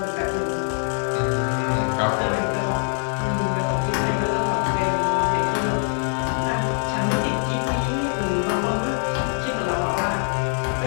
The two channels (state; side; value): silent; right; 57 dB below the other